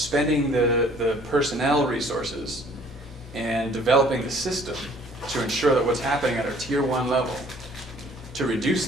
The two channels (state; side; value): normal; both; correlation 0.56